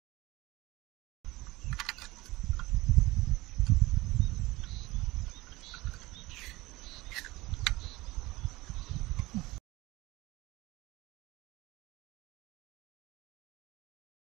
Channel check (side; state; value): left; quieter; 20.2 dB